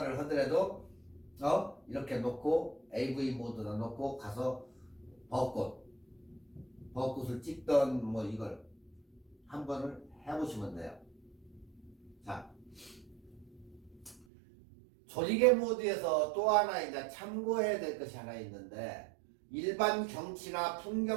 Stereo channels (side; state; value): left; drops out; at 14.2 s